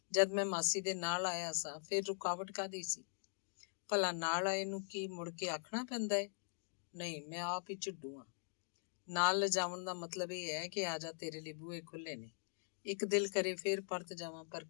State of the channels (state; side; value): silent; right; digital silence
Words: ਜਦ ਮੈਂ ਮਾਸੀ ਦੇ ਨਾਲ ਆਇਆ ਸਾਂ ਫਿਰ ਰੁਕਾਵਟ ਕਾਹਦੀ ਸੀ? ਭਲਾ ਨਾਲ ਆਏ ਨੂੰ ਕੀ ਮੁੜ ਕੇ ਆਖਣਾ ਪੈਂਦਾ ਹੈ? ਨਹੀਂ, ਮੈਂ ਆਪ ਹੀ ਝਿੱਡੂ ਹਾਂ। ਨਾਲ ਲਿਜਾਵਣ ਦਾ ਮਤਲਬ ਇਹ ਹੈ ਕਿ ਆ ਜਾ, ਤੇਰੇ ਲਈ ਬੂਹੇ ਖੁੱਲੇ ਨੇ। ਇੱਕ ਦਿਲ ਕਰੇ ਫੇਰ ਪਰਤ ਜਾਵਾਂ, ਪਰ